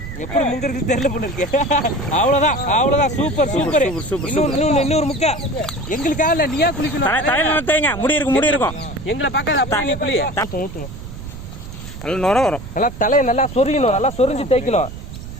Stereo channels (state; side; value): noise; right; rumble, 11 dB below the sound